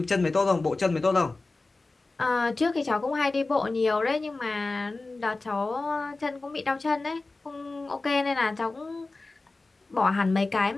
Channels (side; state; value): right; quieter; 3.4 dB